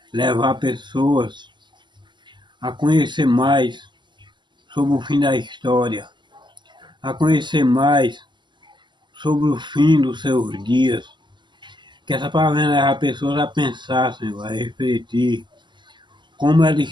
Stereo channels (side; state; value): left; late; 0.22 ms